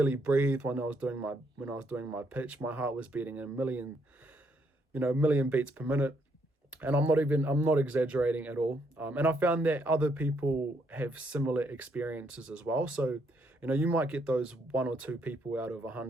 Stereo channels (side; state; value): both; normal; correlation 0.73